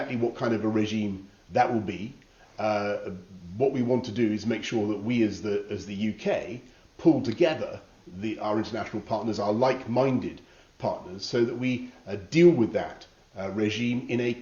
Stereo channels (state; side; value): identical; both; correlation 1.00